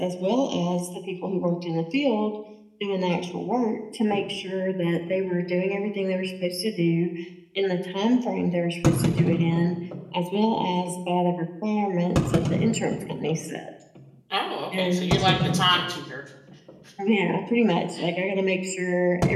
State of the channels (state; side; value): identical; both; correlation 1.00